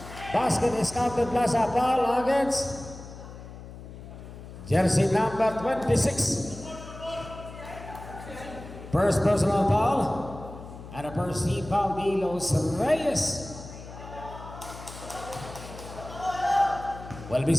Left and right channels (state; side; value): noise; left; hum, 14 dB below the sound